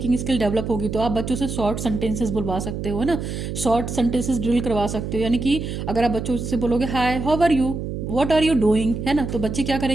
स्किल डेवलप होगी, तो आप बच्चों से शॉर्ट सेंटेंसेस बुलवा सकते हो ना, शॉर्ट सेंटेंसेस ड्रिल करवा सकते हो। यानी कि अगर आप बच्चों से बोलोगे hi, how are you, what are you doing, है ना, तो बच्चे क्या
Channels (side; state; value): right; noise; hum, 5 dB below the sound